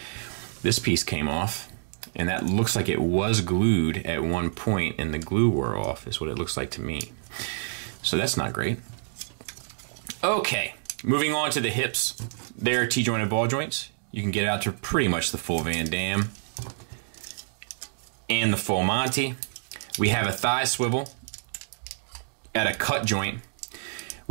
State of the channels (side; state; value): left; silent; digital silence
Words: This piece came off, and that looks like it was glued at one point, and the glue wore off, is what it looks like to me. So that's not great. Okay, moving on to the hips. They're T-jointed ball joints. You can get out to pretty much the full Van Damme and the full Monty. We have a thigh swivel at a cut joint,